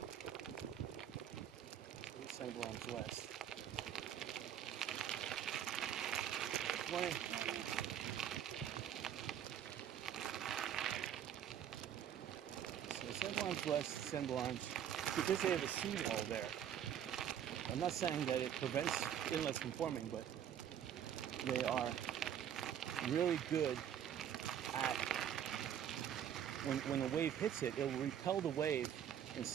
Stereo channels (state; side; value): quieter; left; 9.6 dB